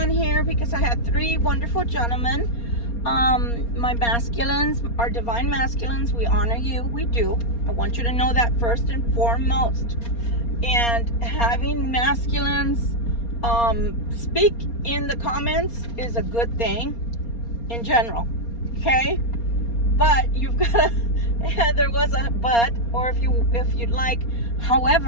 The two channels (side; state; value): right; late; 4.3 ms